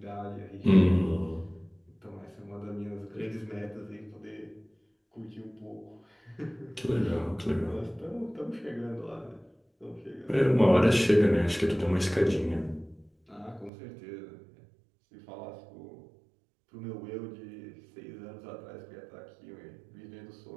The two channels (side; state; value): left; drops out; at 13.7 s